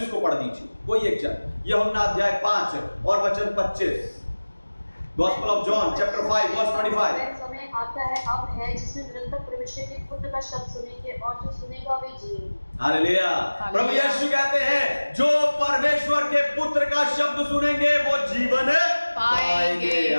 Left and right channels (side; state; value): both; inverted; correlation -1.00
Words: को पढ़ दीजिए, कोई एक जन, यूहन्ना अध्याय 5 और वचन 25, gospel of John chapter 5 verse 25। समय आता है, अब है, जिसमें निरंतर परमेश्वर के पुत्र का शब्द सुनेंगे और जो सुनेगा वे जिएगा। हालेलुया। प्रभु यीशु कहते हैं जो परमेश्वर के पुत्र का शब्द सुनेंगे वो जीवन पाएंगे।